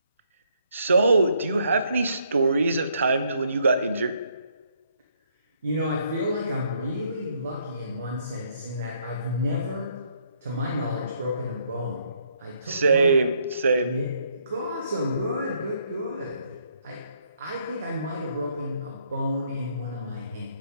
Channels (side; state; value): both; inverted; correlation -0.70